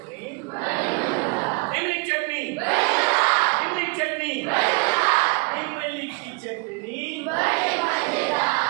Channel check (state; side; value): quieter; left; 32.5 dB